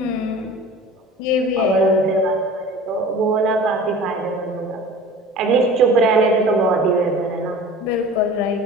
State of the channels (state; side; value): normal; both; correlation 0.41